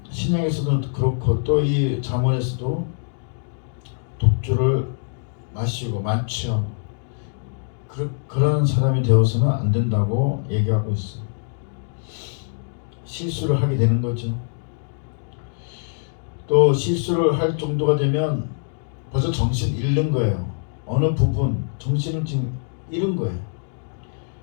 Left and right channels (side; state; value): right; silent; digital silence